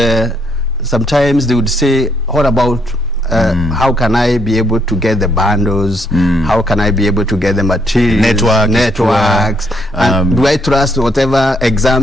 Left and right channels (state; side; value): normal; both; correlation 0.72